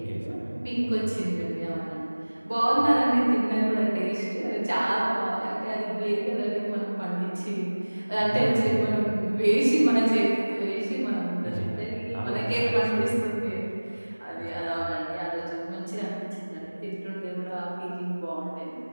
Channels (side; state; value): both; inverted; correlation -1.00